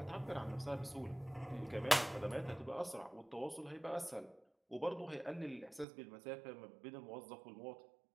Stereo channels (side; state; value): left; drops out; at 5.9 s